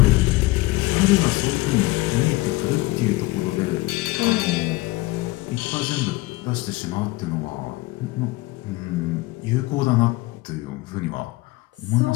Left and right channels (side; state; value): right; quieter; 20.7 dB